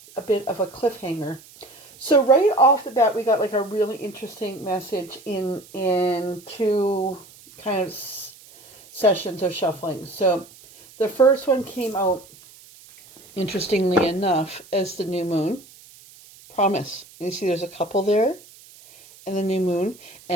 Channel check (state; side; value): noise; right; hiss, 23 dB below the sound